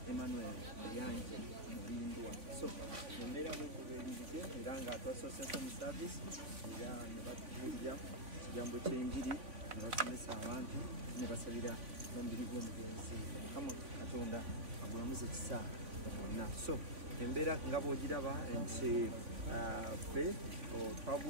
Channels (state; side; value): late; left; 3.5 ms